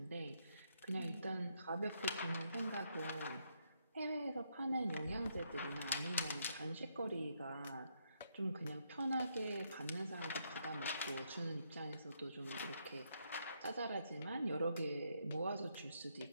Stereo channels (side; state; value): both; inverted; correlation -0.76